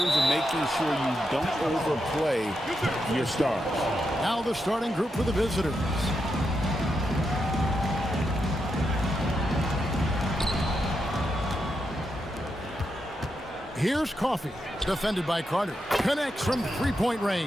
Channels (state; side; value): normal; both; correlation 0.84